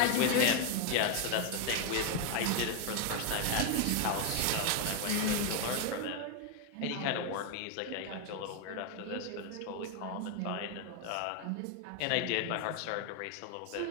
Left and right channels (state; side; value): different; both; correlation 0.01